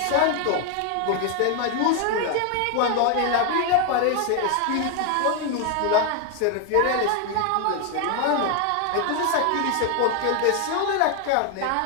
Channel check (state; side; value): different; both; correlation 0.01